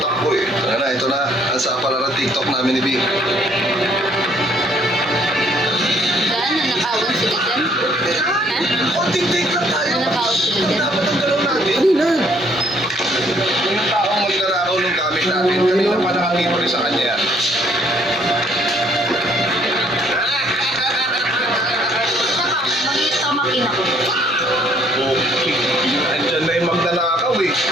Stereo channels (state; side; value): normal; both; correlation 0.64